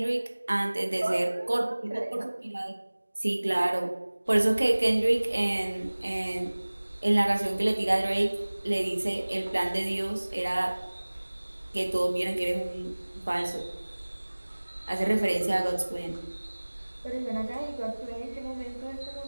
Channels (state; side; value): inverted; both; correlation -1.00